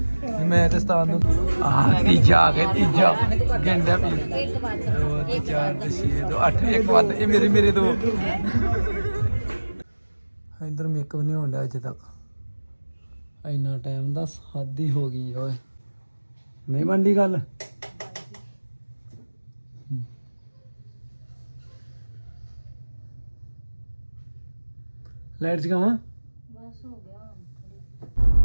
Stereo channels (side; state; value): both; inverted; correlation -1.00